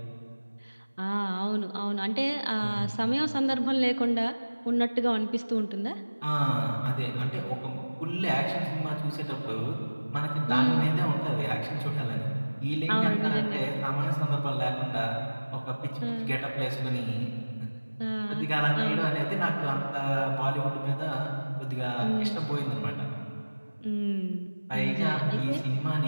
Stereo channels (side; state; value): both; inverted; correlation -1.00